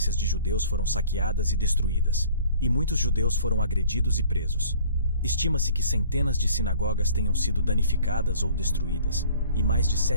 de judeus foram saqueadas e destruídas, e muitos judeus foram agredidos e presos. Estima-se que centenas de sinagogas tenham sido danificadas ou destruídas, e mais de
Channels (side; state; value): both; inverted; correlation -0.51